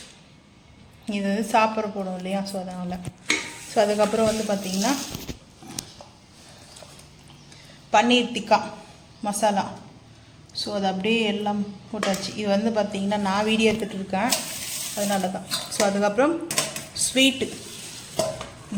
இது வந்து சாப்பிட்ற போடும் இல்லையா, ஸோ அதனால். ஸோ அதுக்கப்புறம் வந்து பார்த்திங்கன்னா பன்னீர் டிக்கா மசாலா. ஸோ அது அப்படியே எல்லாம் போட்டாச்சு. இது வந்து பார்த்திங்கன்னா நான் வீடியோ எடுத்துகிட்டு இருக்கேன், அதனால தான். ஸோ அதுக்கப்புறம் ஸ்வீட்டு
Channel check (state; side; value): identical; both; correlation 1.00